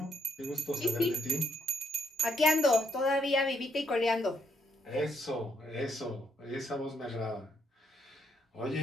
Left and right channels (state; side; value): normal; both; correlation 0.73